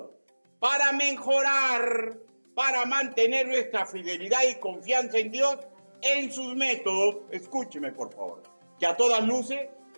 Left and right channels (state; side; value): inverted; both; correlation -1.00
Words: para mejorar, para mantener nuestra fidelidad y confianza en Dios, en sus métodos. Escúcheme, por favor, que a todas luces